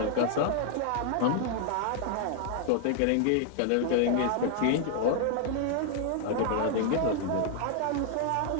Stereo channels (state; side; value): different; both; correlation 0.00